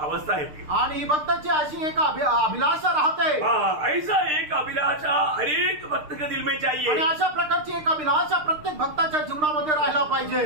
है। आणि ही भक्ताची अशी एक अभिलाषा राहते। हाँ, ऐसा एक अभिलाषा हर एक भक्त के दिल में आणि चाहिए। अशा प्रकारची एक अभिलाषा प्रत्येक भक्ताच्या जीवनामध्ये राहायला पाहिजे।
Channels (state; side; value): late; left; 6.6 ms